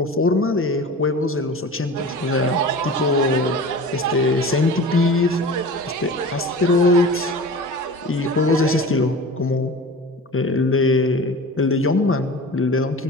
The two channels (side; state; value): both; normal; correlation 0.36